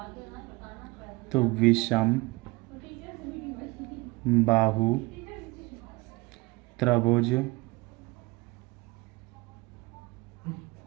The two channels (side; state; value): left; quieter; 22.9 dB